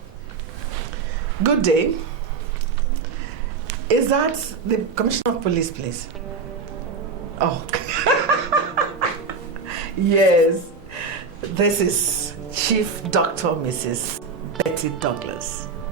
Good day. Is that the Commissioner of Police, please? Oh. Yes. This is Chief Dr. Mrs. Betty Douglas.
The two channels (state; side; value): quieter; left; 4.8 dB